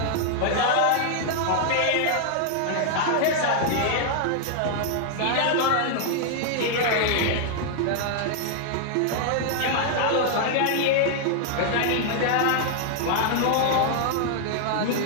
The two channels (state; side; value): different; both; correlation 0.00